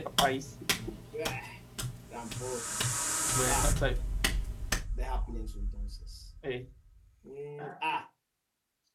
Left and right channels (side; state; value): both; identical; correlation 1.00